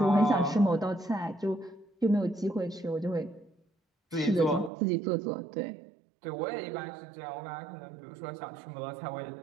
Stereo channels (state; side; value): drops out; left; at 4.7 s